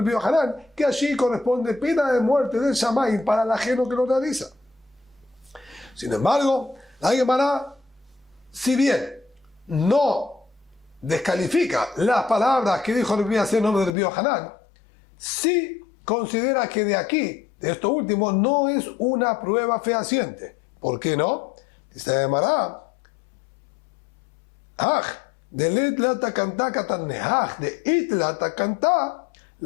Biohanan, que allí corresponde pena de muerte del Shamayim para el ajeno que lo realiza. Sin embargo, la Gemara, si bien no descalifica las palabras que dijo el Biaser nombre del Biohanan, sí considera que de aquí, de esto último, no es una prueba fehaciente. ¿Por qué no? Dice la Gemara, de letlata cantá catanne, de itlata cantá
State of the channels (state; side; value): drops out; right; at 14.0 s